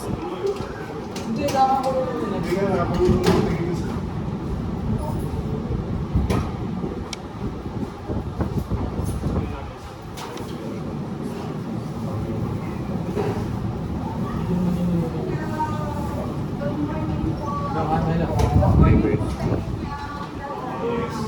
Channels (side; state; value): both; identical; correlation 1.00